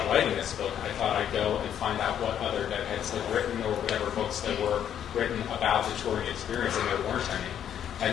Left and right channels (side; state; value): right; quieter; 9.6 dB